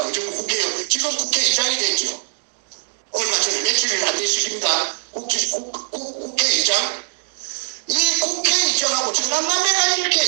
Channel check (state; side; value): silent; left; digital silence